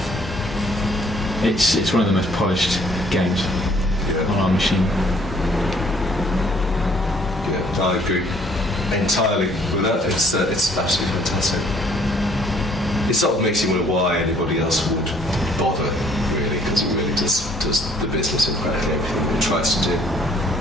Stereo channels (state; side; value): normal; both; correlation 0.61